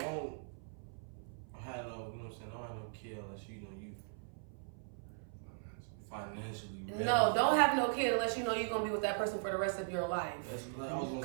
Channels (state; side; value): silent; left; 52 dB below the other